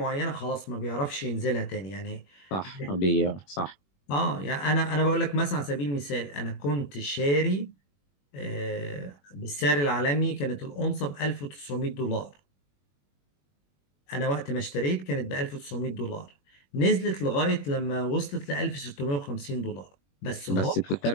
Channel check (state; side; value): late; right; 21 ms